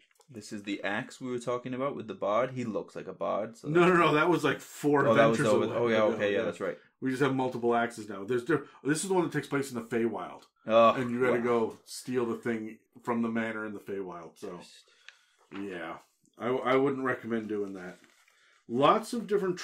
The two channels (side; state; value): both; identical; correlation 1.00